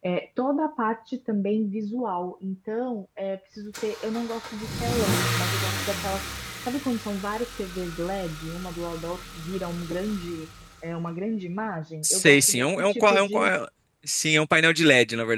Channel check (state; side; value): identical; both; correlation 1.00